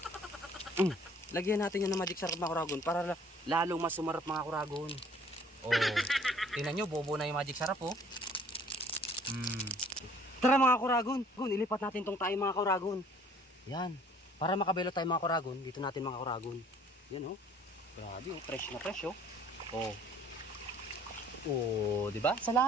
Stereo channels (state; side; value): normal; both; correlation 0.56